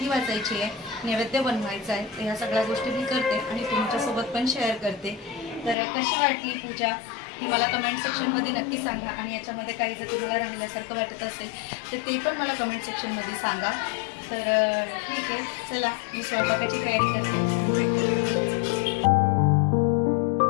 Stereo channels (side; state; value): right; drops out; at 5.8 s